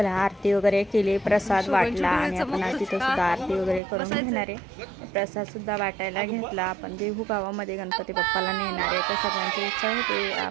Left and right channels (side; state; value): left; drops out; at 3.8 s